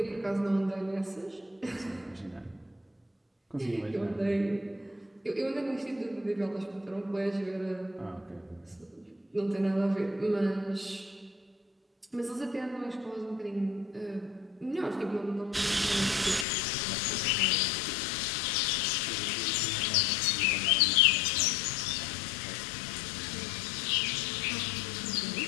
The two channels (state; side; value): drops out; right; at 16.4 s